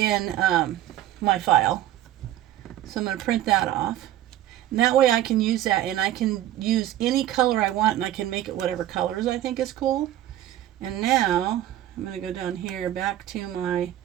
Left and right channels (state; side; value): quieter; left; 13.2 dB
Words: my file. So I'm going to print that off. And that way I can use that, and I can use any color I want, and I can make it whatever colors I think is cool. And now I'm going to go down here back to my,